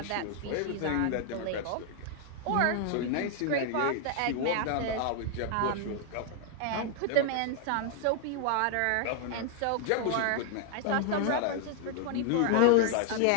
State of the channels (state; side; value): different; both; correlation 0.00